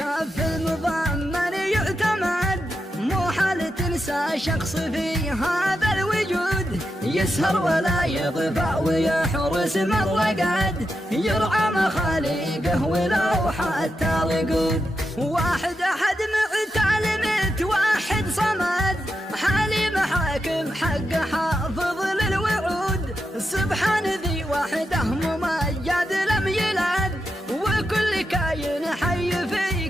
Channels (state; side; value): normal; both; correlation 0.87